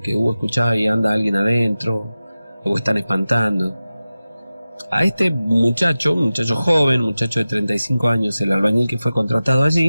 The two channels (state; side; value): inverted; both; correlation -0.95